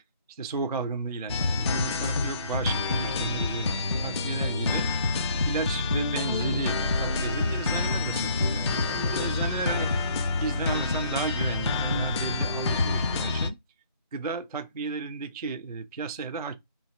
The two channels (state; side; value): inverted; both; correlation -0.59